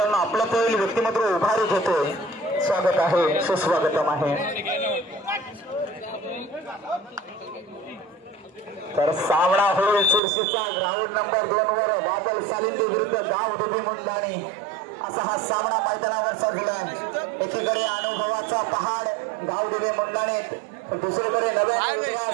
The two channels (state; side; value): drops out; left; at 10.2 s